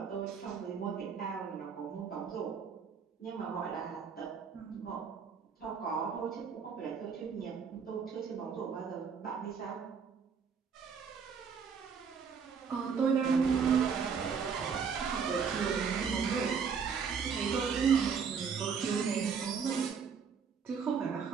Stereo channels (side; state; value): left; quieter; 6.3 dB